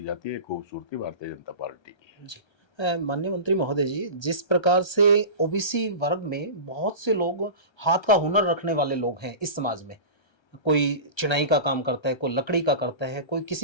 जाती है। खूबसूरती भारतीय जनता पार्टी की है। जी। माननीय मंत्री महोदय जी, जिस प्रकार से ओबीसी वर्ग में बहुत से लोग हाथ का हुनर रखने वाले लोग हैं इस समाज में। कोई चिनाई का काम करता है, कोई लकड़ी का करता है, कोई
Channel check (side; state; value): right; late; 1.3 ms